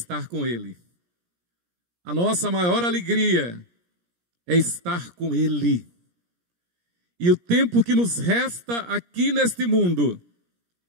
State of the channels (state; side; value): late; left; 17 ms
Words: com Ele. A nossa maior alegria é estar com Ele. E o tempo que nos resta aqui neste mundo